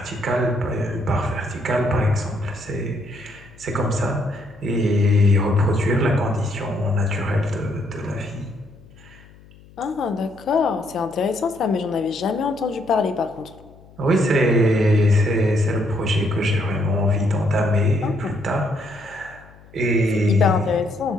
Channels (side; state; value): left; noise; hum, 24 dB below the sound